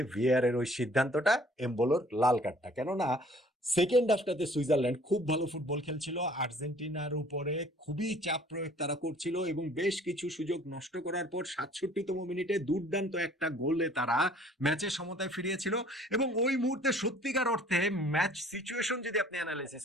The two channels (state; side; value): normal; both; correlation 0.54